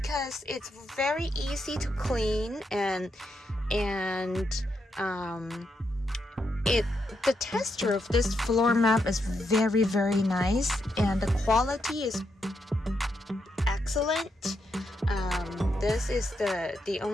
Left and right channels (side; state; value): both; normal; correlation 0.81